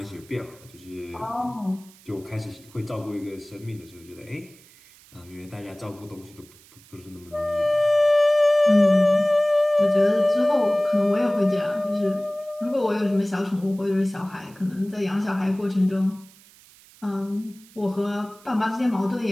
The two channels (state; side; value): noise; right; hiss, 25 dB below the sound